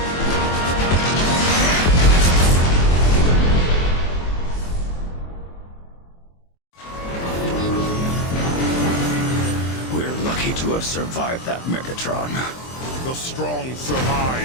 To have survived that, Megatron. The strong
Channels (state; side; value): late; right; 23 ms